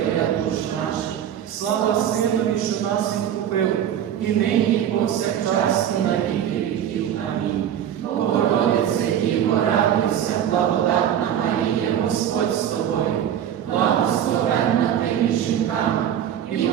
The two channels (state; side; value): quieter; left; 10.0 dB